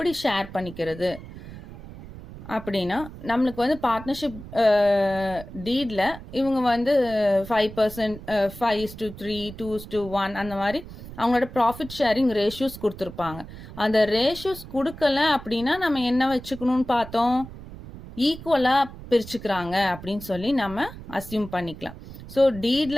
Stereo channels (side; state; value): right; noise; rumble, 14 dB below the sound